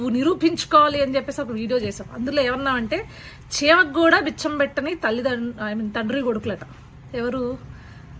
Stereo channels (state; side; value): identical; both; correlation 1.00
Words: నిరూపించుకోవాలి అని చెప్పేసి ఒక వీడియో చేసాం. అందులో ఏమన్నామంటే చీమకు కూడా బిచ్చం పెట్టని తండ్రి కొడుకులట.